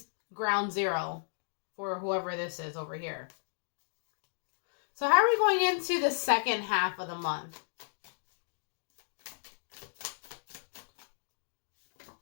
ground zero for whoever this is over here. So how are we going into the second half of the month?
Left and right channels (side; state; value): right; silent; digital silence